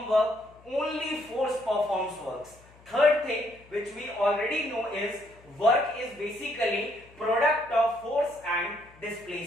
work, only force performs works. Third thing which we already know is, work is basically product of force and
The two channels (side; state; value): left; noise; hum, 26 dB below the sound